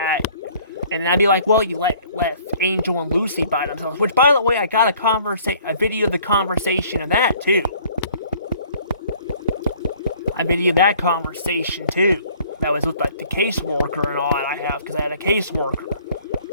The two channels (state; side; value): inverted; both; correlation -0.56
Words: and I'd be like, well, you left Angel and Lucy by themselves, which, by the way, I got a video of the conversation of that, too. I videoed that conversation, too. That was with, the caseworker and all that I have, because I had a caseworker.